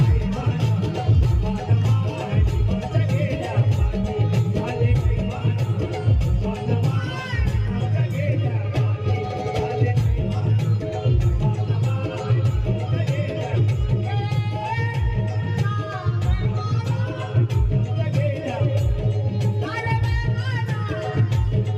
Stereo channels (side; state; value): both; identical; correlation 1.00